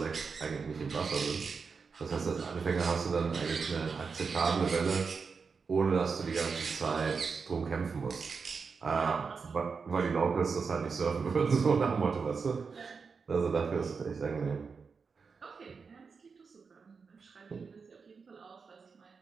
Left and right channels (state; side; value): quieter; left; 5.2 dB